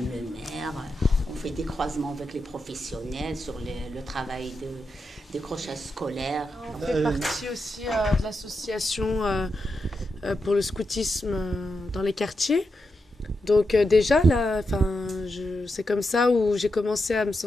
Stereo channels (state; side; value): normal; both; correlation 0.87